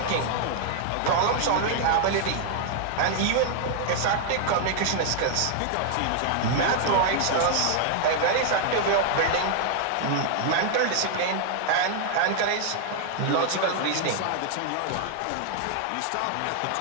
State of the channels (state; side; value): different; both; correlation 0.00